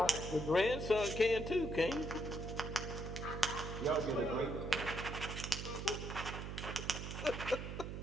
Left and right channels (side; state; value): right; noise; hum, 6 dB below the sound